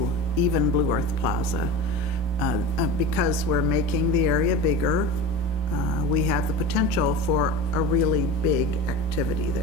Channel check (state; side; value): normal; both; correlation 0.30